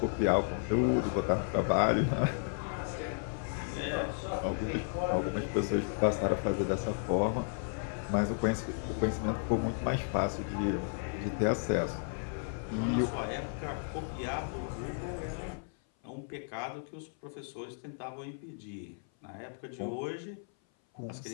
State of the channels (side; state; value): right; silent; 55 dB below the other